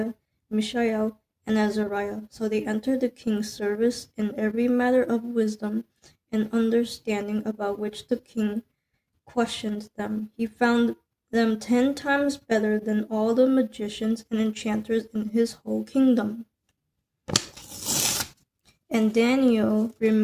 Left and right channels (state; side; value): identical; both; correlation 1.00